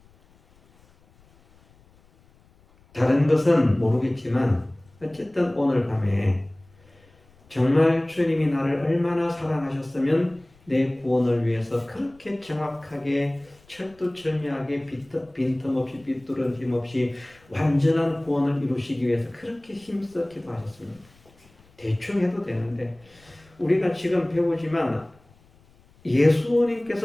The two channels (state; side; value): noise; left; rumble, 30 dB below the sound